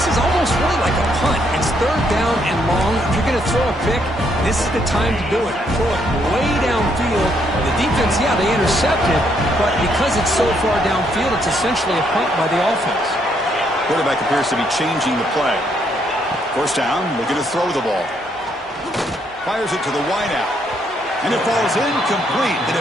is almost really like a punt. It's 3rd down and long. If you're going to throw a pick, this is the time to do it. Throw it way downfield. The defense, yeah, they intercepted, but because it's so far downfield, it's essentially a punt by the offense. Quarterback appears to be changing the play. 1st down, looking to throw the ball. Fires it to the wideout. And it falls incomplete. The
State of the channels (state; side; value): normal; both; correlation 0.72